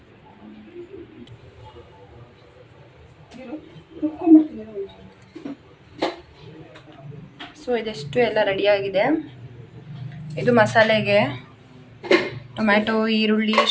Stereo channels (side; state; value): both; identical; correlation 1.00